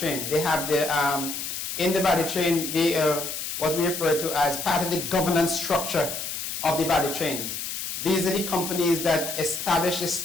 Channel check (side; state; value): left; noise; hiss, 5 dB below the sound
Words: They have in the value chain, they are what we refer to as part of the governance structure of the value chains. These are the companies that establish the